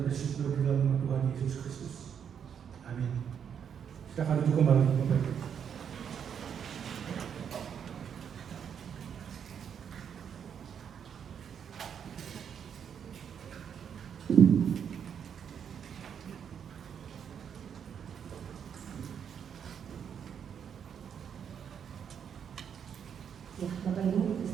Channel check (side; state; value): left; quieter; 7.9 dB